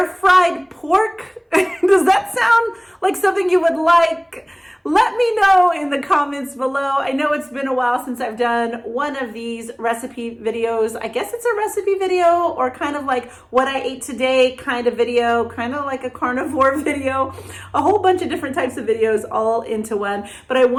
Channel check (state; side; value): identical; both; correlation 1.00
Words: fried pork? Does that sound like something you would like? Let me know in the comments below. I know it's been a while since I've done one of these recipe videos. I guess it's a recipe video or kind of like what I ate today kind of video, kind of like a carnivore video, a whole bunch of different types of videos all into one. But I